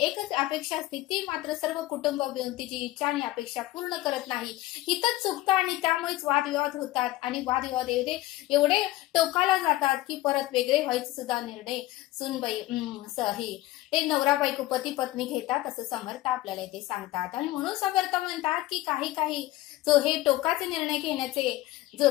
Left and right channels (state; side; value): quieter; right; 16.9 dB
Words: अपेक्षा असते, ती मात्र सर्व कुटुंब मिळून तिची इच्छा आणि अपेक्षा पूर्ण करत नाही। इथंच चुकतं आणि त्यामुळेच वादविवाद होतात आणि वादविवाद एवढे टोकाला जातात की परत वेगळे व्हायचे सुद्धा निर्णय सुनबाई ते नवरा बायको पती पत्नी घेतात, असं समर्थ आपल्याला इथे सांगतात। आणि म्हणून समर्थ म्हणतात की काही जो हे टोकाचे निर्णय